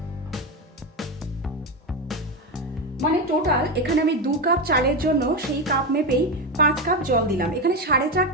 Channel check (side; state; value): both; normal; correlation 0.14